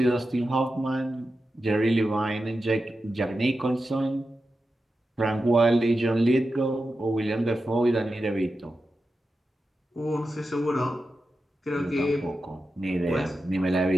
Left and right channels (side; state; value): both; normal; correlation 0.91